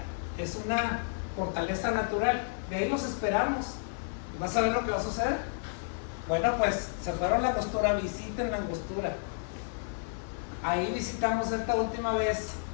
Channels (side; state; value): right; silent; 57 dB below the other